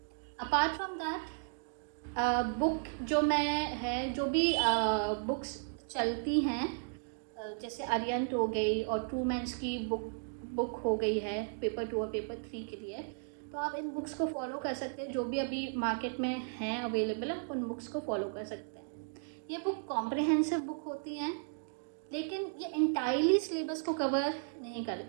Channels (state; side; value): silent; left; digital silence